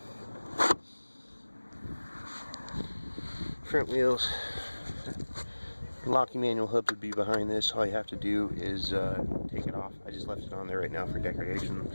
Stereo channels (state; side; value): inverted; both; correlation -1.00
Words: Front wheels. Locking manual hub would be behind this. All you have to do is take it off. I just left it on there right now for decoration.